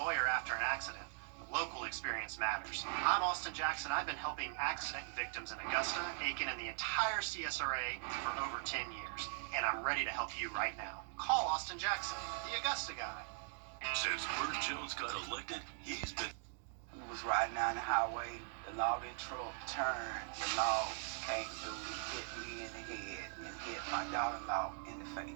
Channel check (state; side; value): silent; left; 50 dB below the other